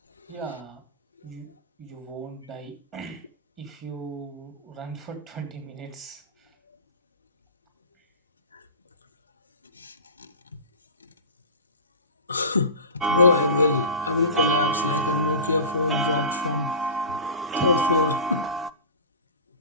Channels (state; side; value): inverted; both; correlation -0.31